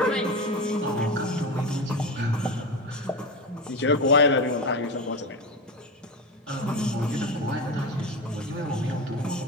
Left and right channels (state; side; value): normal; both; correlation 0.22